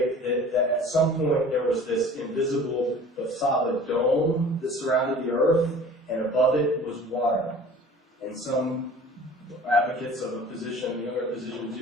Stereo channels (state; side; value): normal; both; correlation 0.44